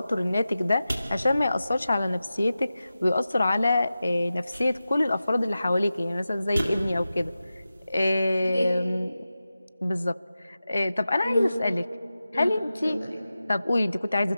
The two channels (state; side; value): inverted; both; correlation -0.94